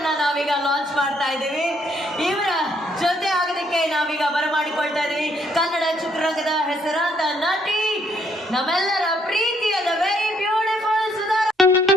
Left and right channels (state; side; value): normal; both; correlation 0.69